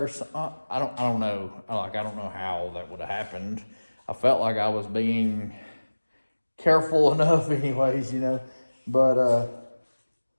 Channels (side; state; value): both; inverted; correlation -1.00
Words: or something. I don't know. I don't know how that would have happened. I felt like I was being careful enough anyways, But